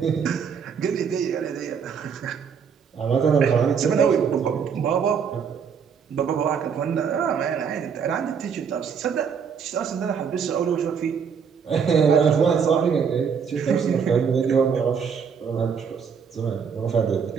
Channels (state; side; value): quieter; left; 6.7 dB